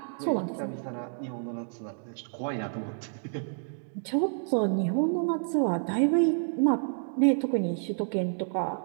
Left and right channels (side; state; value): left; silent; digital silence